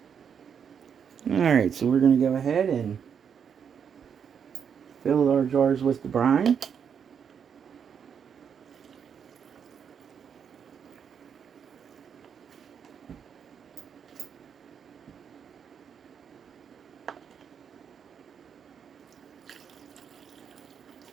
Alright, so we're going to go ahead and fill our jars with the brine.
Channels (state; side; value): quieter; left; 7.4 dB